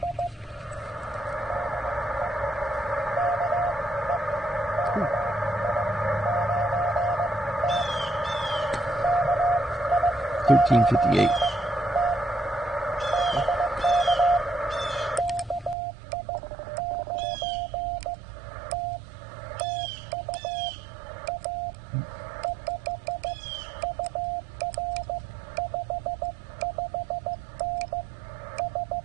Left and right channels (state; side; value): drops out; left; at 15.8 s